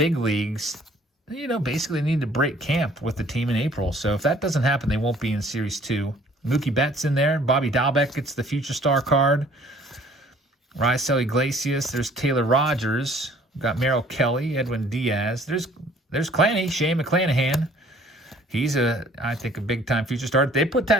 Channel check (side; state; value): both; normal; correlation 0.57